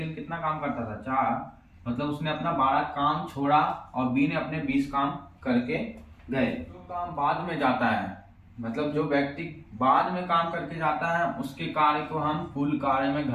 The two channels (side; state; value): both; identical; correlation 1.00